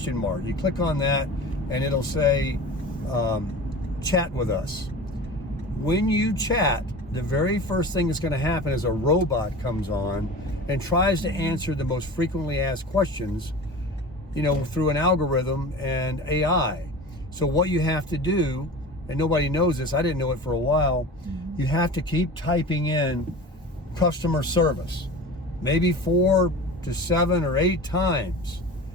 mark. You click on that and it'll say, chat with us. When you chat, the very first thing that's going to happen is a robot comes on and tries to answer the most frequently asked questions, through an algorithm and AI. So what you have to do, and nobody knows this, I didn't know it for a while, you have to keep typing in customer service, maybe 4 to 7 or 8 times,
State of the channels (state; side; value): normal; both; correlation 0.35